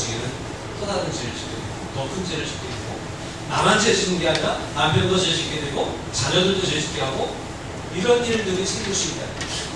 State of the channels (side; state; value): both; identical; correlation 1.00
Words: 또 다른 죄를 짓게 되고 더 큰 죄를 짓게 되고 나만 죄 짓는 게 아니라 남편도 죄 짓게 되고 자녀들도 죄 짓게 하고 이런 일들이 생길 수 있다.